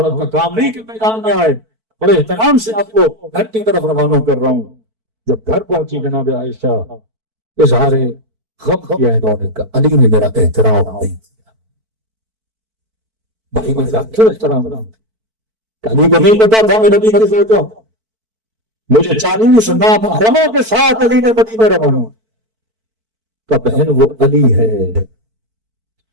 کا کام نہیں کہ میدان میں آئے. بڑے احترام سے آپ کو گھر کی طرف روانہ کر رہا ہوں. جب گھر پہنچی جناب عائشہ اظہار غم کیا انہوں نے کہا علی نے میرا احترام نہیں کیا. بھائی میں کیوں احترام رہا ہوں؟ علی کو نہیں پتا تھا میں نبی کی سوچا مجھے 40 محرموں کے ساتھ علی نے مدینے روانہ کا. بہن وہ علی ہے،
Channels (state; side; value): late; left; 4.5 ms